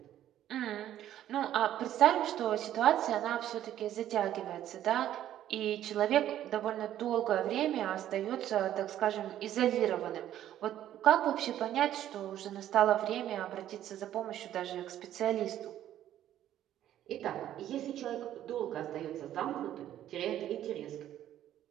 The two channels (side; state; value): left; quieter; 11.9 dB